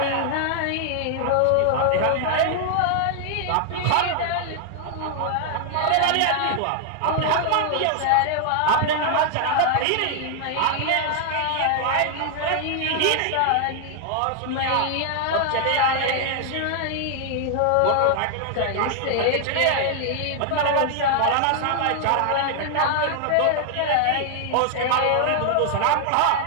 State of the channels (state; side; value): different; both; correlation 0.00